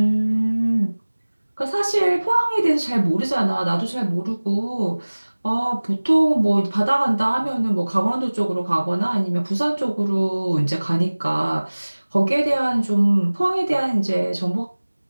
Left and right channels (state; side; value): inverted; both; correlation -1.00